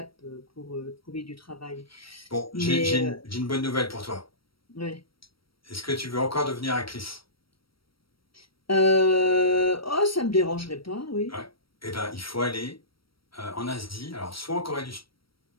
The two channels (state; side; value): late; right; 0.75 ms